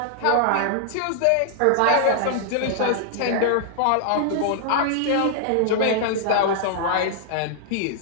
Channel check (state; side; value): different; both; correlation -0.01